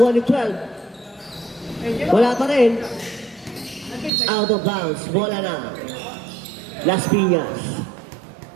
ni 12. Wala pa rin. Out of bounds, bola na. Las Piñas.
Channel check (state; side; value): drops out; left; at 4.1 s